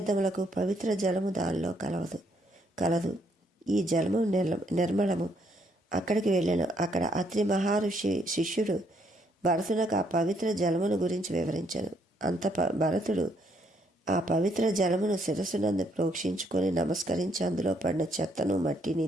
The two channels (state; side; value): normal; both; correlation 0.71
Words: పవిత్ర జలము దానిలో కలదు. ఈ జలము నిర్మలము. అక్కడికి వెళ్ళాను. అక్కడ అత్రి మహర్షి శిష్యుడు భరతునకు ఆ పవిత్ర జలమును గురించి వివరించాను. భరతుడు ఆ పవిత్ర జలమును శిరస్సునందు ప్రోక్షించుకొని నమస్కరించి అందులో పడిన చెత్తను మట్టిని